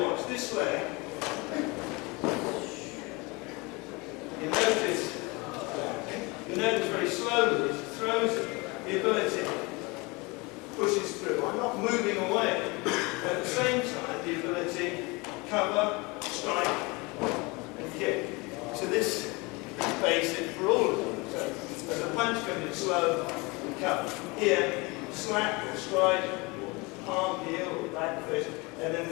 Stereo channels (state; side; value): quieter; right; 26.0 dB